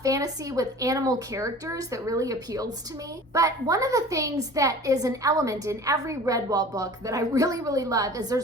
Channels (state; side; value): normal; both; correlation 0.42